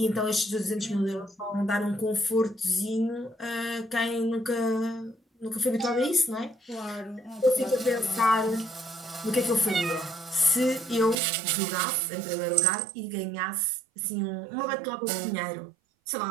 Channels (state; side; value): drops out; left; at 11.2 s